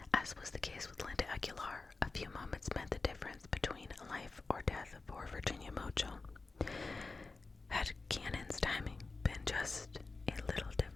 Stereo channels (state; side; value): quieter; right; 3.8 dB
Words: As was the case with Linda Aguilar, a few moments meant the difference between life or death for Virginia Mochil. Had Cannon's timing been just a little